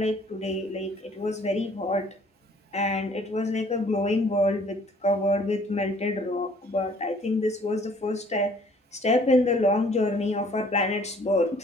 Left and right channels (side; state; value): both; normal; correlation 0.57